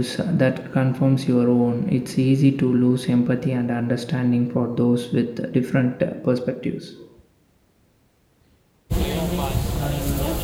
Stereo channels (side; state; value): both; identical; correlation 1.00